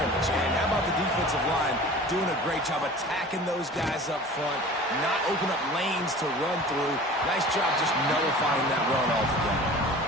And how about the defensive line doing a great job attacking those guys up front, not open up lanes to run through. Nice job just nullifying that run altogether.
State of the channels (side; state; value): both; normal; correlation 0.41